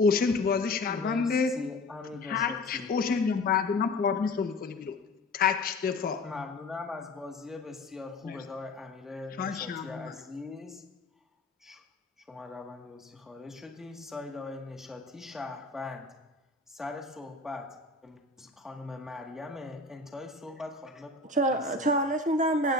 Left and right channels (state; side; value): quieter; right; 3.2 dB